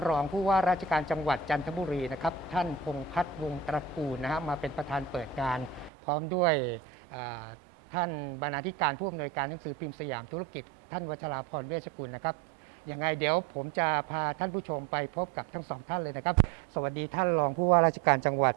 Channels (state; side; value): drops out; left; at 5.9 s